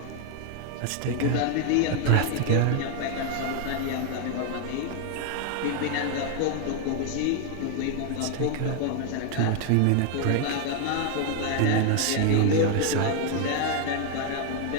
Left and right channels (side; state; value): both; different; correlation 0.00